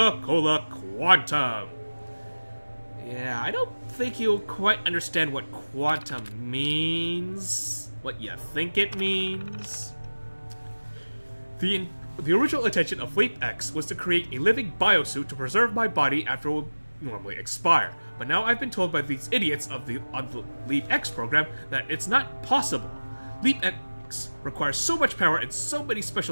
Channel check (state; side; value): inverted; both; correlation -1.00